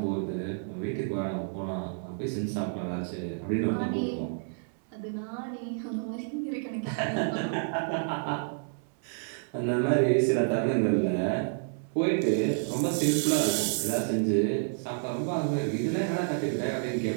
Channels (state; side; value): silent; left; 58 dB below the other